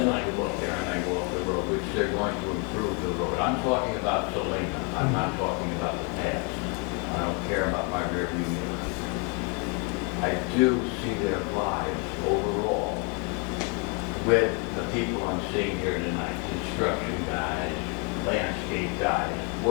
I go up there and I go up the road, which they're going to improve the road. I'm talking about Selena. I'm not talking about the past. I don't care about my rearview mirror. I do see their lives overall with the people I'm seeing here tonight. Construction guys, landscape guys,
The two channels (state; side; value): quieter; right; 35.3 dB